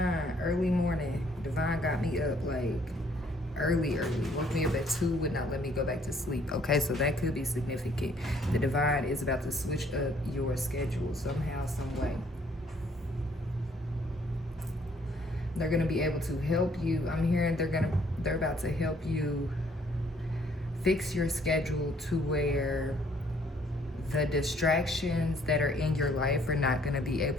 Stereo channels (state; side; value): normal; both; correlation 0.63